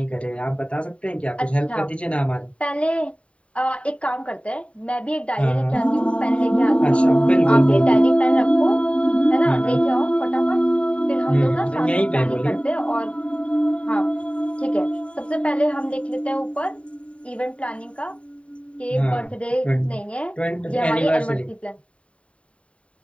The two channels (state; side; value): late; right; 0.062 ms